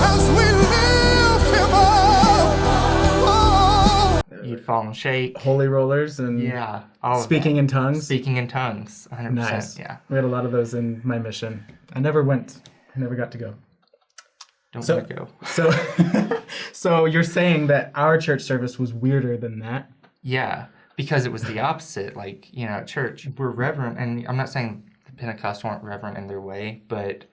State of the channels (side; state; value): both; identical; correlation 1.00